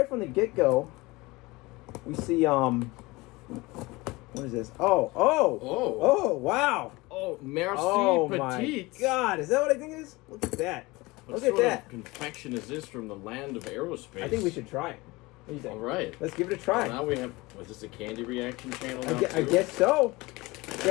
from the get go, we see what is this? Oh, wow. Oh, merci My petite. God, is that what I think it is? Look at that. What Look at sort that. of confection is this from the land of aerospace? I think we should try it. What do you think? All right. Let's give it a try. Well, now we have. Was this a candy reaction channel? I guess so. We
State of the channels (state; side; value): quieter; right; 22.4 dB